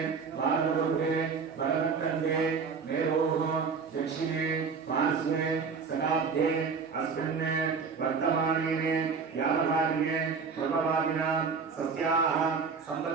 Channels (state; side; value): quieter; left; 5.4 dB